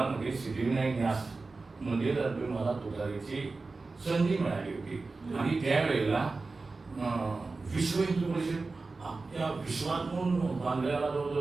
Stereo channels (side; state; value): left; quieter; 3.8 dB